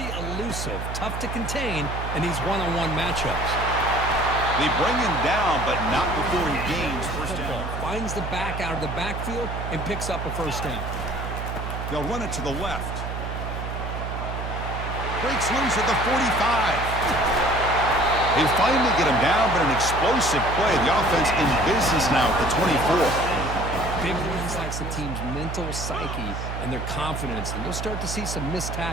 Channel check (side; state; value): right; noise; hum, 5 dB below the sound